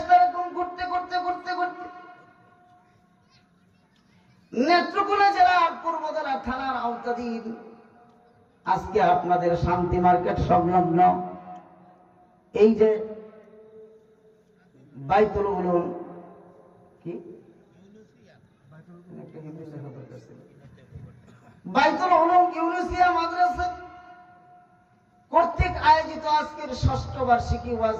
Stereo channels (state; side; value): identical; both; correlation 1.00